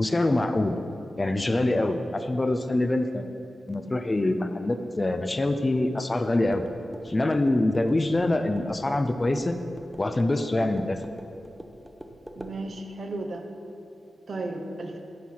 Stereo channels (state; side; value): normal; both; correlation 0.96